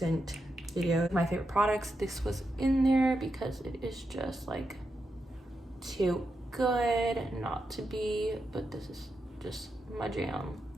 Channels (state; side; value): normal; both; correlation 0.86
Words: videos, my favorite products, this was in there because it is just like too good not to be, but this is just my jam.